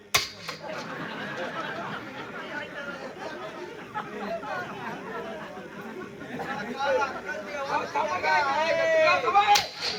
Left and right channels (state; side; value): identical; both; correlation 1.00